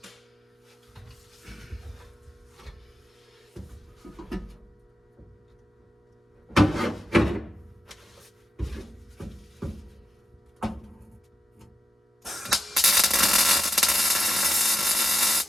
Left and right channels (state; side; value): normal; both; correlation 0.90